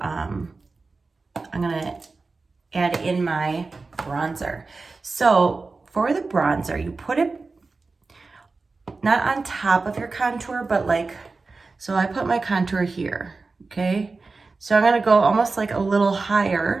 gonna add in my bronzer. So for the bronzer, you put it not on top of your contour, but like, so I put my contour here, okay? So I'm gonna go almost like a little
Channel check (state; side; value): quieter; left; 3.9 dB